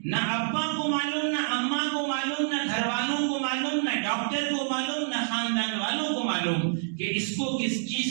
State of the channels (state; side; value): silent; left; digital silence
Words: نہ ابا کو معلوم، نہ اماں کو معلوم، نہ گھر والوں کو معلوم، نہ ڈاکٹر کو معلوم، نہ خاندان والوں کو معلوم کہ اس کو کس